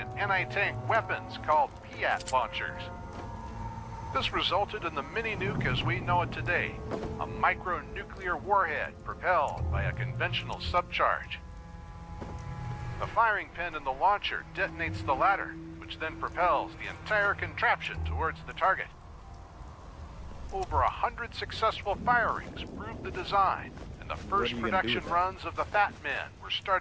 anti-tank weapons called Piat launchers. This resulted in the mini-nuke as we know it today, a micronuclear warhead propelled by a conventional subcharge. The firing pin in the launcher detonates the latter, which then propels the entire contraption towards the target. Over 100 successful firings proved the design, and the first production runs of the Fat Man were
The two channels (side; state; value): both; identical; correlation 1.00